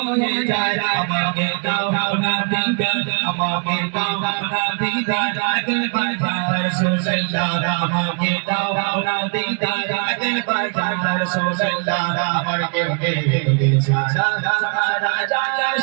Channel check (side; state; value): left; quieter; 38.9 dB